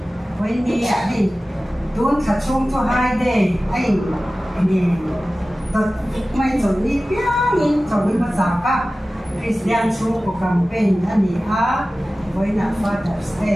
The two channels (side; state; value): both; normal; correlation 0.96